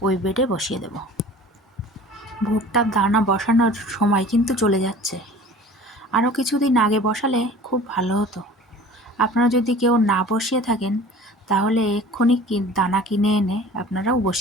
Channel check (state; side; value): normal; both; correlation 0.44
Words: ওই বেডে বসিয়ে দেব। ভুট্টার দানা বসানোর সময় কিন্তু চলে যাচ্ছে। আরও কিছুদিন আগে বসালে খুব ভালো হতো। আপনারা যদি কেউ না বসিয়ে থাকেন তাহলে এক্ষুনি দানা কিনে এনে আপনারাও